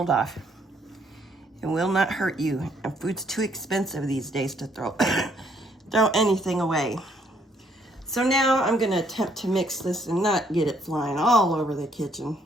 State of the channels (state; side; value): normal; both; correlation 0.68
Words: off. It will not hurt you. And food's too expensive these days to throw anything away. So now I'm gonna attempt to mix this and not get it flying all over the kitchen.